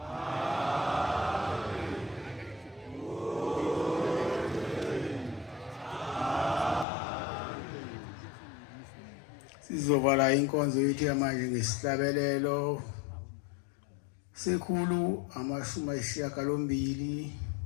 Sizovala inkonzo yethu yamanje ngesihlabelelo sekhulu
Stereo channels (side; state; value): right; drops out; at 6.9 s